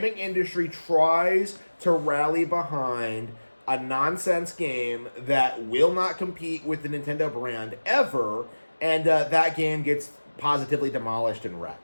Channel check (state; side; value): inverted; both; correlation -1.00